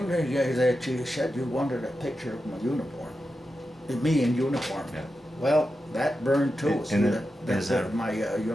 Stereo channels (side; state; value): both; normal; correlation 0.90